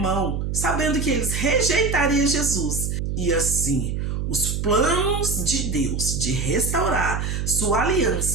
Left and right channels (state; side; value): noise; right; hum, 2 dB below the sound